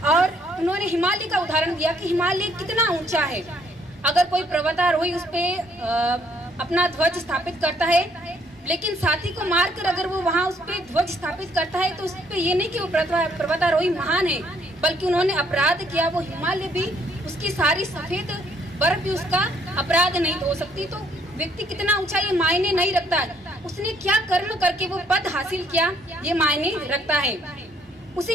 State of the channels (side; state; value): both; normal; correlation 0.66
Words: और उन्होंने हिमालय का उदाहरण दिया कि हिमालय कितना ऊंचा है, अगर कोई पर्वतारोही उस पे अपना ध्वज स्थापित करता है, लेकिन साथी को मारकर अगर वो वहाँ उस पे ध्वज स्थापित करता है तो उस पे ये नहीं कि वो पर्वतारोही महान है, बल्कि उन्होंने अपराध किया। वो हिमालय भी, उसकी सारी सफेद बर्फ भी उसका अपराध नहीं हो सकती। तो व्यक्ति कितना ऊंचा ये मायने नहीं रखता है, उसने क्या कर्म करके वो पद हासिल किया ये मायने रखता है।